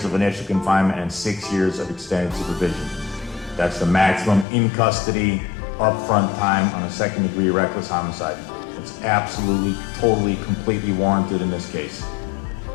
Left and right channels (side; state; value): right; drops out; at 4.5 s